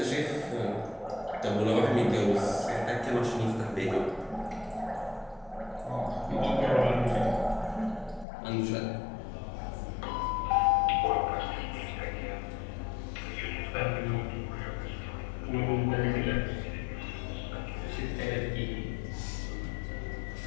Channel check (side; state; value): right; drops out; at 8.2 s